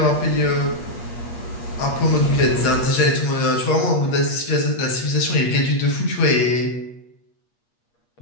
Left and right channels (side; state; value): right; late; 8.4 ms